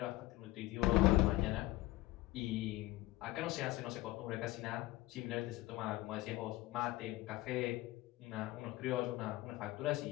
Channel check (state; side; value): quieter; right; 18.1 dB